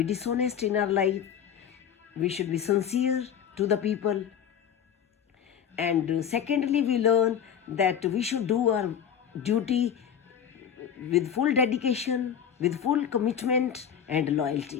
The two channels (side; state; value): right; quieter; 8.5 dB